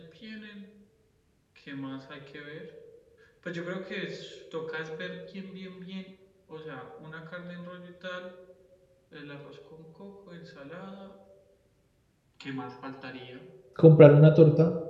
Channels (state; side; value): identical; both; correlation 1.00